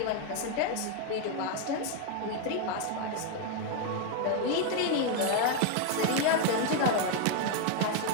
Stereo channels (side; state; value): both; different; correlation 0.01